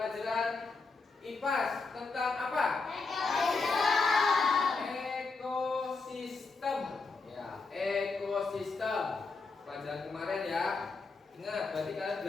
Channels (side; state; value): right; quieter; 4.1 dB